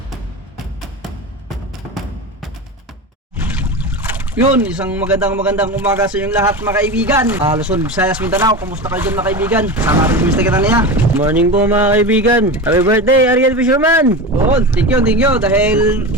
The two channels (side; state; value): both; normal; correlation 0.25